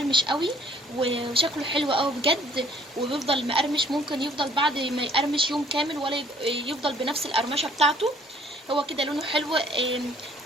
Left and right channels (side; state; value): both; normal; correlation 0.59